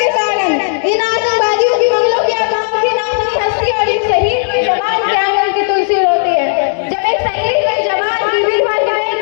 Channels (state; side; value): silent; right; digital silence